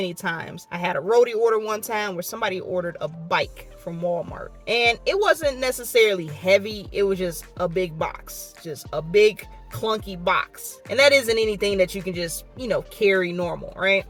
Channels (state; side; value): identical; both; correlation 1.00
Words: times. I had a roadie order one time where somebody ordered a bike from Walmart, and it wasn't necessarily heavy. It was just a big box, just a big clunky box, and that isn't anything that you can just carry normal, right?